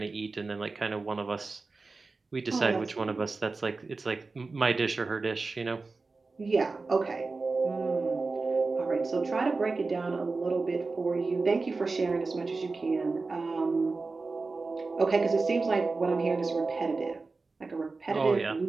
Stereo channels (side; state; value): left; quieter; 3.9 dB